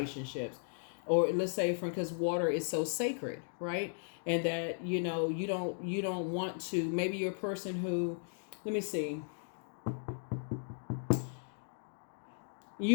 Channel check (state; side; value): silent; right; digital silence